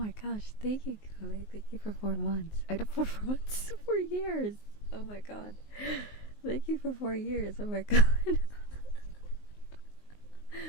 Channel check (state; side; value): late; right; 19 ms